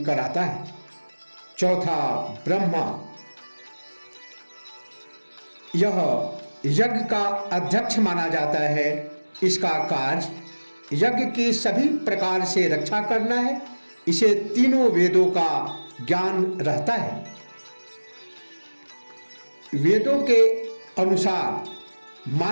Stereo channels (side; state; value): both; inverted; correlation -1.00